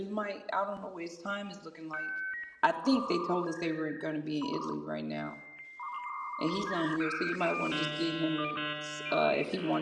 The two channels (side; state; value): both; identical; correlation 1.00